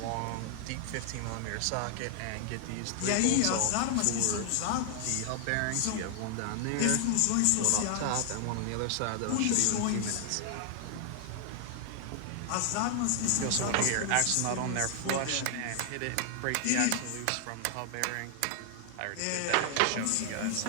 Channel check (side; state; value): both; different; correlation 0.00